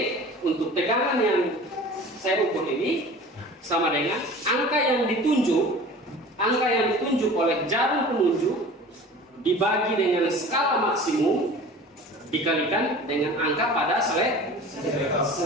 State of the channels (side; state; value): both; normal; correlation 0.41